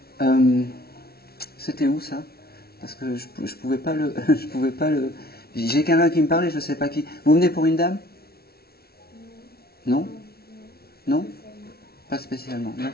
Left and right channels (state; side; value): late; right; 0.45 ms